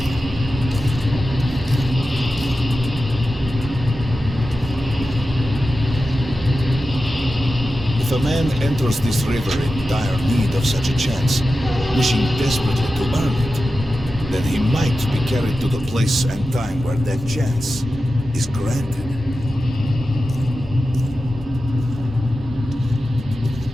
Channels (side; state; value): both; normal; correlation 0.93